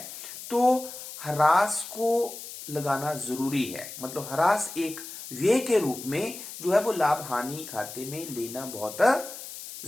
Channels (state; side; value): noise; left; hiss, 11 dB below the sound